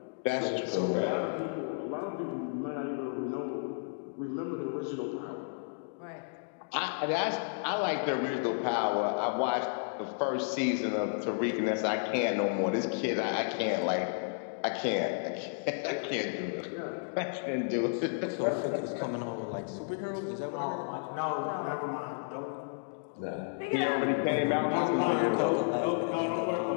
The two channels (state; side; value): silent; right; digital silence